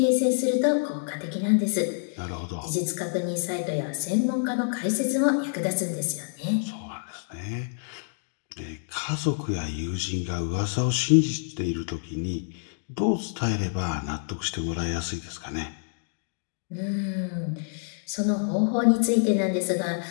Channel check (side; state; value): right; silent; digital silence